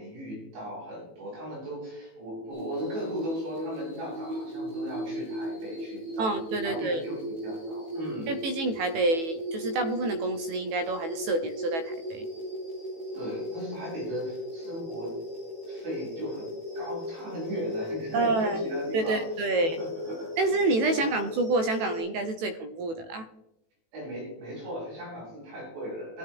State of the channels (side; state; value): left; late; 18 ms